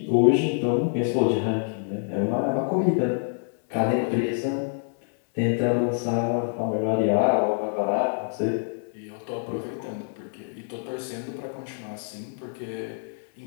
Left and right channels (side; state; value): right; silent; digital silence